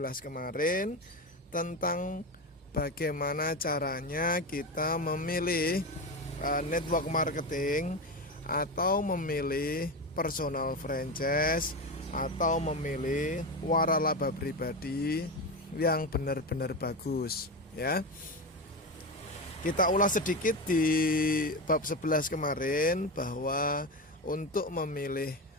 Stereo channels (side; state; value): both; normal; correlation 0.19